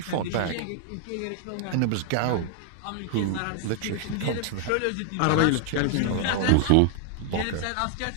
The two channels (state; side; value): different; both; correlation 0.00